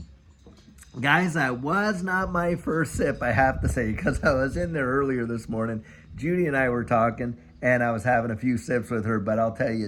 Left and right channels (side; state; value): both; identical; correlation 1.00